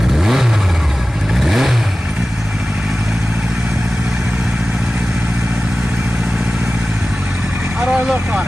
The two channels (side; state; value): both; normal; correlation 0.96